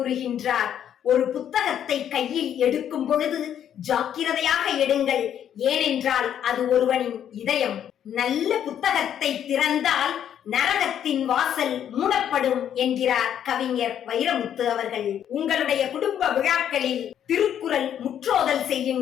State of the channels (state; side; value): quieter; right; 9.7 dB